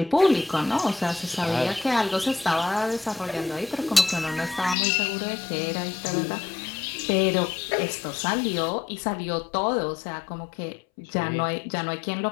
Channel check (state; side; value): drops out; right; at 4.8 s